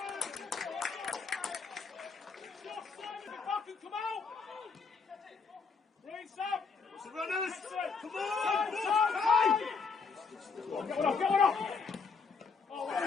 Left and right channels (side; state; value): right; quieter; 5.1 dB